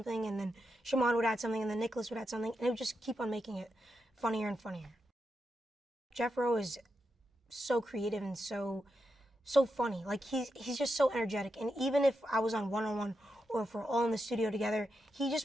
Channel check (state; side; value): normal; both; correlation 0.86